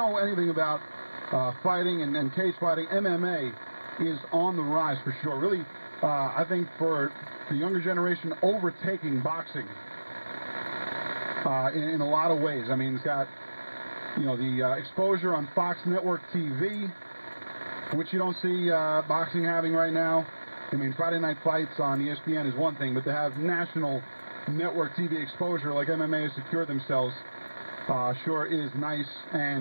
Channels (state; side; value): inverted; both; correlation -1.00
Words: anything about fighting and cage fighting, MMA is on the rise for sure. Really, I think for the younger generation, overtaking boxing in a lot of ways. I mean, it's got, the exposure on Fox Network TV, which you don't see boxing having right now. I mean, Friday Night Fights on ESPN is one thing, but to have national network TV exposure like MMA has secured themselves sure is nice.